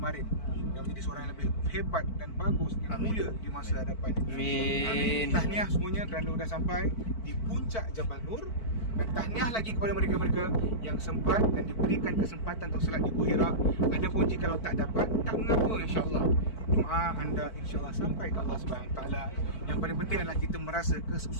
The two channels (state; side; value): late; right; 4.5 ms